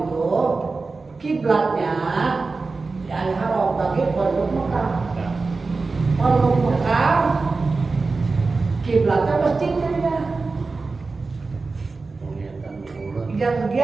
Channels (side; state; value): left; quieter; 4.0 dB